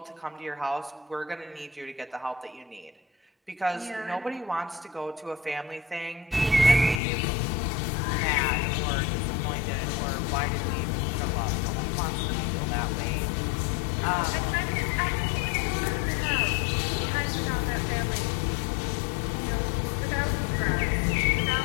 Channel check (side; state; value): right; drops out; at 7.0 s